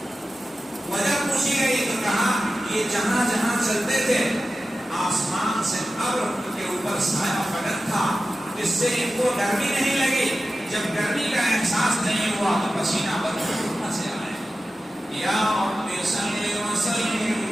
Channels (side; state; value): both; normal; correlation 0.93